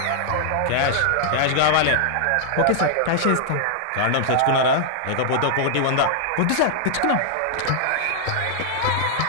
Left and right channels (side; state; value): both; different; correlation -0.01